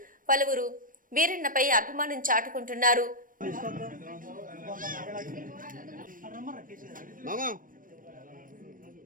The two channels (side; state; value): left; late; 0.40 ms